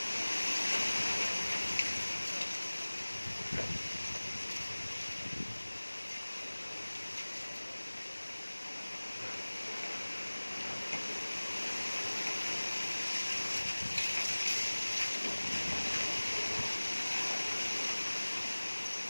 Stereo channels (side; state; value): both; inverted; correlation -1.00